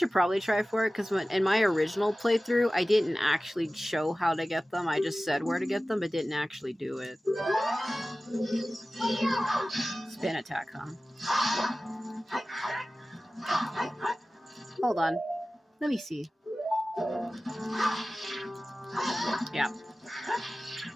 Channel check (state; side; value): normal; both; correlation 0.96